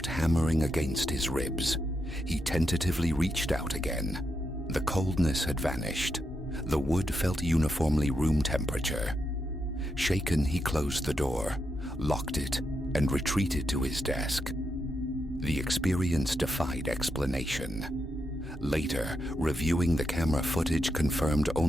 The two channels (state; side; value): normal; both; correlation 0.83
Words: hammering against his ribs. He tentatively reached out again. The coldness had vanished. The wood felt uniformly room temperature. Shaken, he closed the door, locked it, and retreated to his desk. The experience defied explanation. Later, reviewing the camera footage confirmed